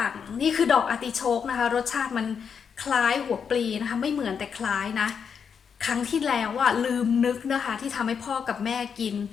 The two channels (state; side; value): quieter; right; 6.8 dB